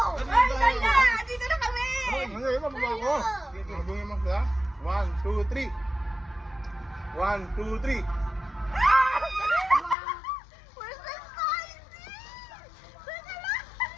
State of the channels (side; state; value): right; drops out; at 10.0 s